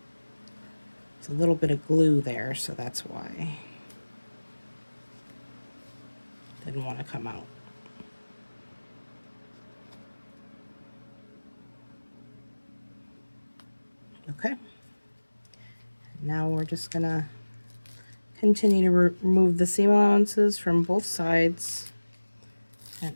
There's a little bit of glue there, so that's why it didn't want to come out. Okay, now we're just gonna continue to remove the seam allowances from both sides, and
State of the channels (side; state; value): both; inverted; correlation -1.00